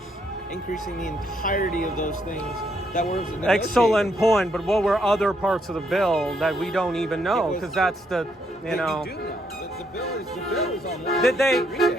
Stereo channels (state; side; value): normal; both; correlation 0.74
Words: increasing the entirety of those things that were negotiated. Excellent point, but what were other parts of the bill that we don't even know? Because that's the, you know. You do know. The bill is online. Did they? Read